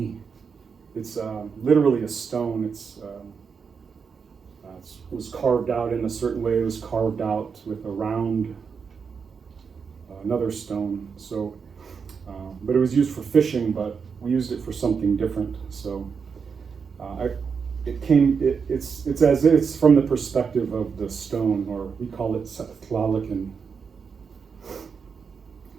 It's literally a stone. It was carved out in a certain way. It was carved out with a round, another stone. So, but it was used for fishing, but we used it for something different. So, it's from the perspective of the stone, or we call it tlalikin.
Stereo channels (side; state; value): left; quieter; 5.9 dB